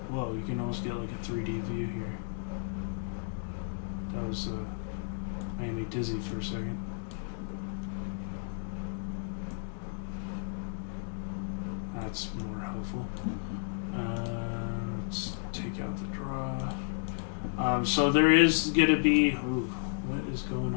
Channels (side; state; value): right; silent; digital silence